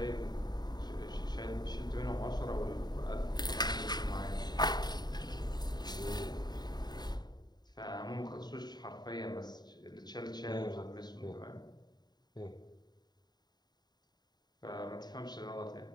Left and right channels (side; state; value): right; late; 0.20 ms